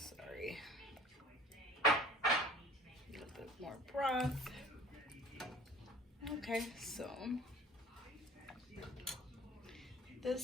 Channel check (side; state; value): both; normal; correlation 0.46